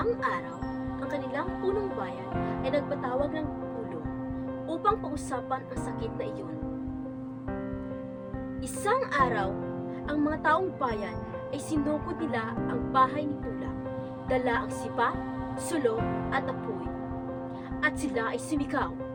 araw, ang kanilang punong bayan ay nagpatawag ng pulong upang pag-usapan ang sakit na iyon. Isang araw, ang mga taong bayan ay sinukod nila ang bahay ni Bulak, dala ang sipa, sulong at apoy. At sila ay sumigaw,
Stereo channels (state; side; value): identical; both; correlation 1.00